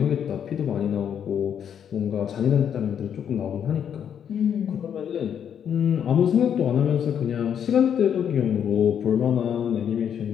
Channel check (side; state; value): right; quieter; 8.6 dB